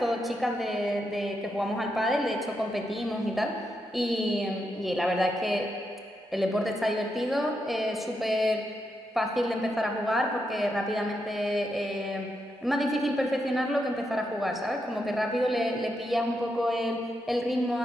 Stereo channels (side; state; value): both; normal; correlation 0.83